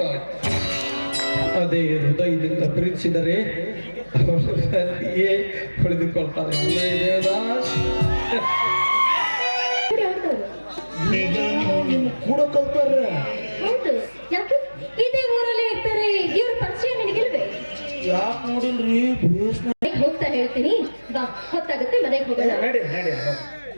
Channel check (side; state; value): both; inverted; correlation -1.00